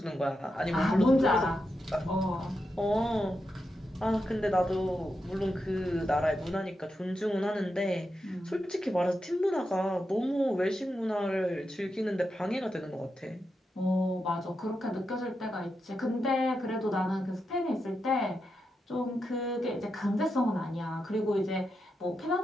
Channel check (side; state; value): both; normal; correlation 0.86